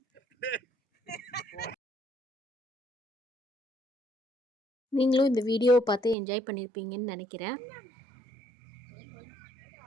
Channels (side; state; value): left; drops out; at 6.2 s